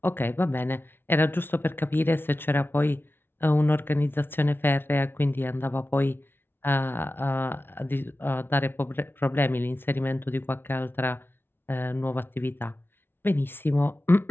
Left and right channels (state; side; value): late; right; 0.11 ms